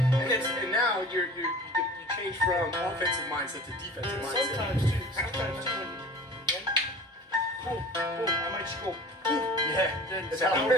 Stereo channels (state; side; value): normal; both; correlation 0.42